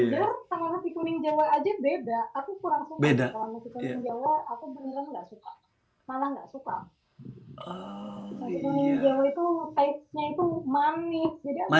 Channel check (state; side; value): identical; both; correlation 1.00